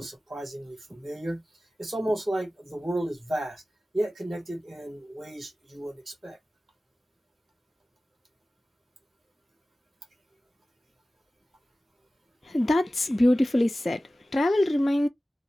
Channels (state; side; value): normal; both; correlation 0.96